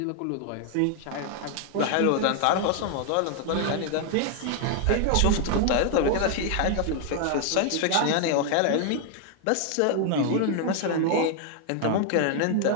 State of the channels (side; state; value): both; different; correlation 0.00